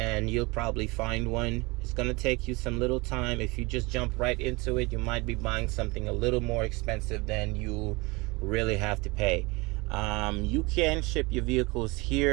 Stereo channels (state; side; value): quieter; left; 25.0 dB